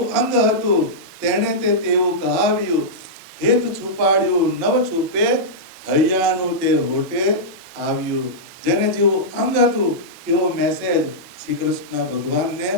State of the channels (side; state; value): both; normal; correlation -0.11